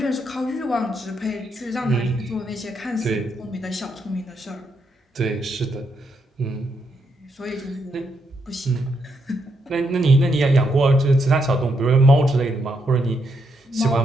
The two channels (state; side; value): normal; both; correlation 0.79